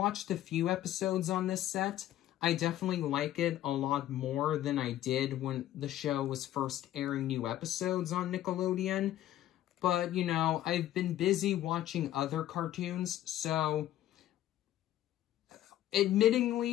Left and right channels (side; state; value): right; quieter; 13.2 dB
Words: a few episodes on this set. I definitely like it a lot more than I did when the show was first airing new episodes on Nickelodeon. But, you know, I've been busy watching other cartoons, so